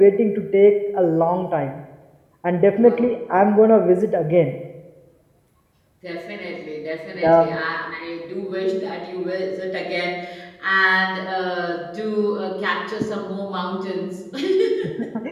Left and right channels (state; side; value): identical; both; correlation 1.00